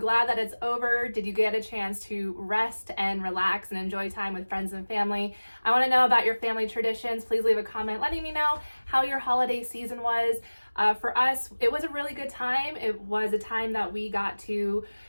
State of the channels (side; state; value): both; inverted; correlation -1.00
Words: that it's over? Did you get a chance to rest and relax and enjoy time with friends and family? I want to know about your family traditions. Please leave a comment letting me know how your holiday season was. For us, it was a really good time. It was a time that we got to